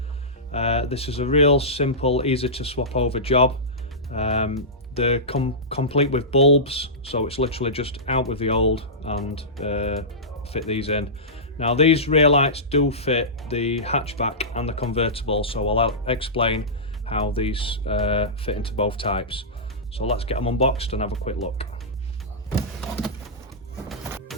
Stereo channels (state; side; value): normal; both; correlation -0.16